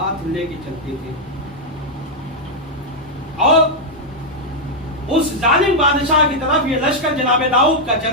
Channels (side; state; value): both; normal; correlation -0.02